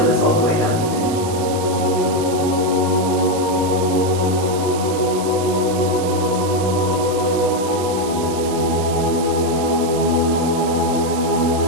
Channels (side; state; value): right; noise; hiss, 12 dB below the sound